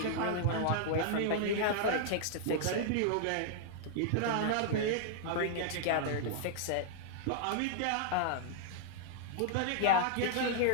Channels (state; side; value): different; both; correlation -0.01